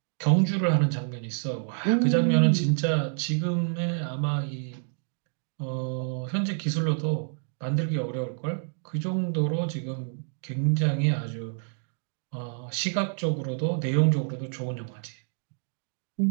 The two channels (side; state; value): left; silent; 59 dB below the other